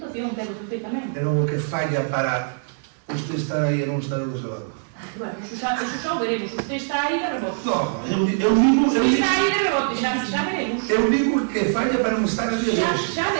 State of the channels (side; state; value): left; silent; digital silence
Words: pero perfectamente. É o que falla para usted estar aí e non estar do seu lado. Bueno, eso xa o veremos. Usted está aí de rebote. No, eu digo... Usted está aí de rebote, xa veremos. Eu digo que falla para non estar aquí de hoxe. Xa